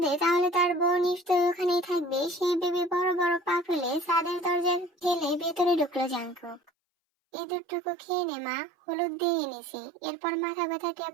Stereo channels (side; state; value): left; drops out; at 6.7 s